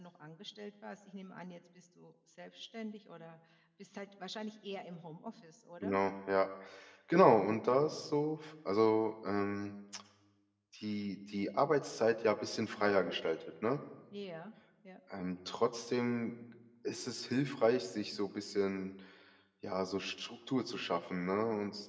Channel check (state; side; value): identical; both; correlation 1.00